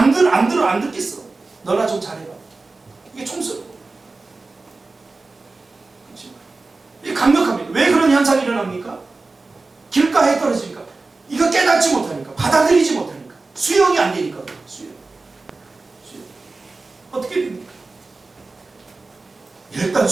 듣겠어. 너나 좀 잘해라. 이게 총수는 이게 강력합니다. 왜 그런 현상이 일어납니까? 길가에 떨어지니까 이거 깨닫지 못하니까 받아들이지 못하니까 수용이 안 되니까 수용. 어떻게 됩니까? 일단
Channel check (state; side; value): quieter; left; 3.6 dB